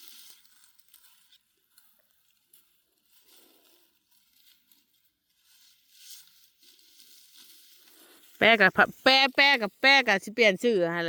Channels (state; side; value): identical; both; correlation 1.00